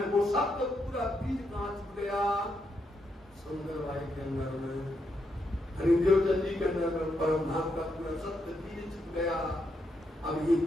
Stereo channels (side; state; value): both; normal; correlation 0.81